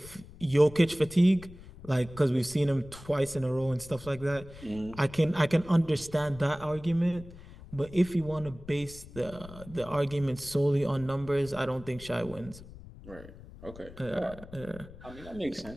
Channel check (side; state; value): left; noise; rumble, 17 dB below the sound